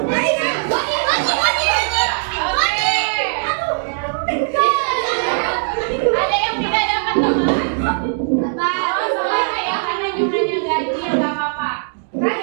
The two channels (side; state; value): left; silent; 67 dB below the other